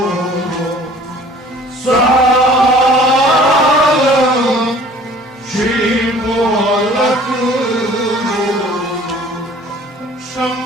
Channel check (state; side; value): normal; both; correlation 0.51